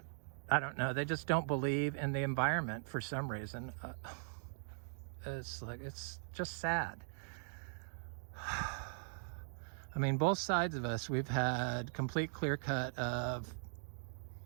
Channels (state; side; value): silent; left; digital silence